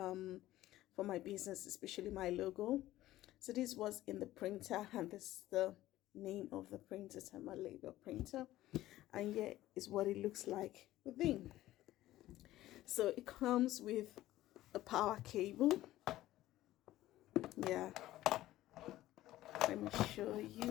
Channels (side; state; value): right; quieter; 15.2 dB